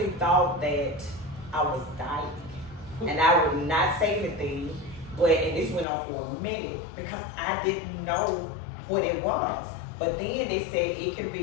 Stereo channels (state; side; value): drops out; right; at 5.9 s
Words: thought that I was dying. And I would not say anything, and this went on for a minute because I didn't know what it was. But then they said it can